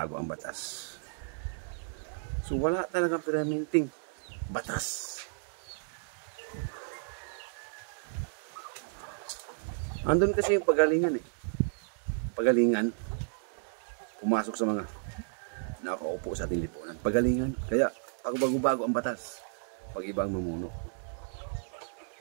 ang batas. So wala talagang permanenteng batas. Andun kasi yung pagalingan eh. Pagalingan, pumasok sa mga nakaupo sa ating lipunan. Pagalingan, kaya bago-bago ang batas. Pag iba ang mamuno.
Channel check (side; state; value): left; silent; digital silence